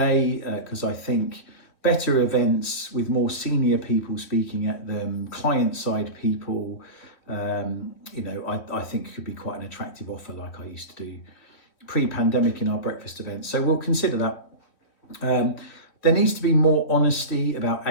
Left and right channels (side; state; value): right; late; 3.1 ms